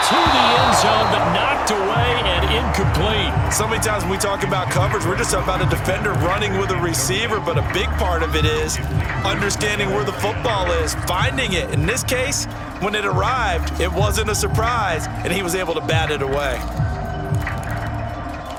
To the end zone, but knocked away and incomplete. So many times when we talk about coverage, we're just about a defender running with a receiver, but a big part of it is understanding where the football is, finding it. In this case, when it arrived, it wasn't a surprise, and he was able to bat it away.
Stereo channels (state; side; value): identical; both; correlation 1.00